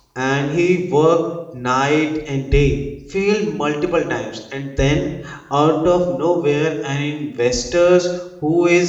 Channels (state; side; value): identical; both; correlation 1.00